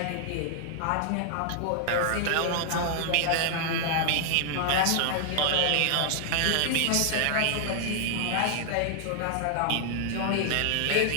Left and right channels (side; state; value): both; different; correlation 0.00